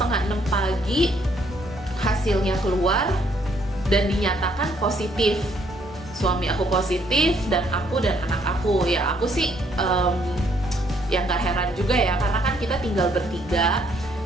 pagi hasilnya keluar dan dinyatakan positif. Suami aku positif dan aku dan anak aku. Ya, aku sih ya nggak heran juga ya, karena kan kita tinggal bertiga.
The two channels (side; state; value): both; normal; correlation 0.68